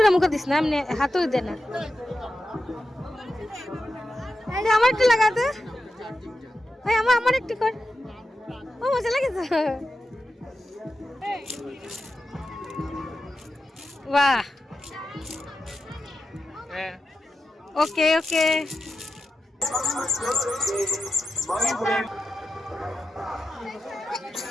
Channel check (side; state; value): both; normal; correlation 0.90